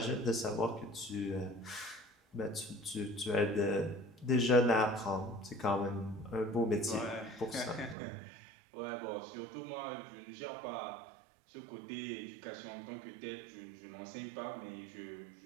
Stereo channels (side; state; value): left; drops out; at 8.0 s